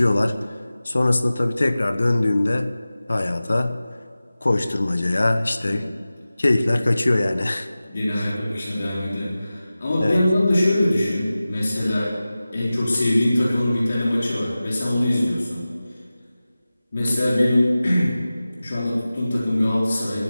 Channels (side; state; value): both; inverted; correlation -0.96